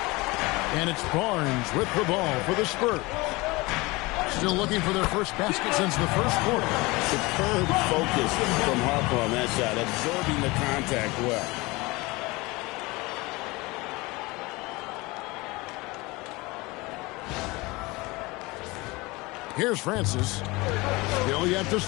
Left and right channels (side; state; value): right; quieter; 23.3 dB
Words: And it's Barnes with the ball for the Spurs. Still looking for their first basket since the first quarter. Superb focus from Harper on that shot, absorbing the contact well. Here's Francis. Still yet to